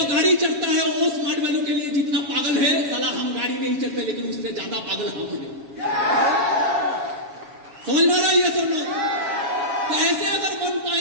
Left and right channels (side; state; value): left; late; 7.2 ms